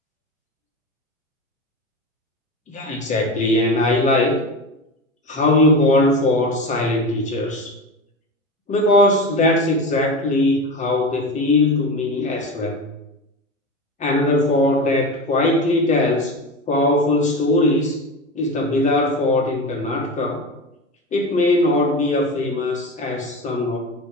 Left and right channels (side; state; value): both; normal; correlation 0.25